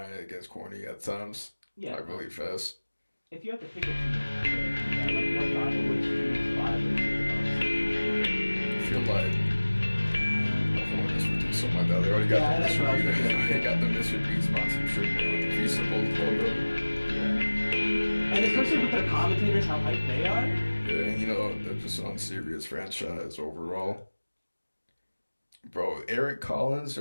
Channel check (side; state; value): both; inverted; correlation -1.00